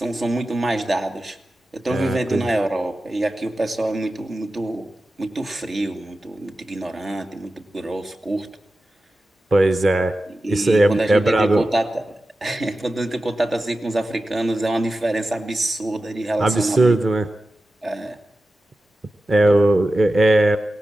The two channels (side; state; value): both; normal; correlation 0.93